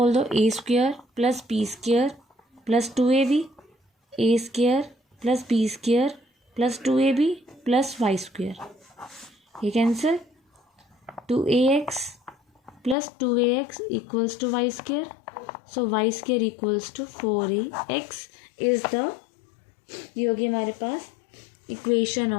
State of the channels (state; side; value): drops out; right; at 13.0 s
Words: दो, A square plus P square plus 2AB, A square plus B square plus 2AB plus Y square. ये cancel, 2AX plus 2AX equals to Y square. So Y square equals to 4AX is the, ये होगी हमारे पास equation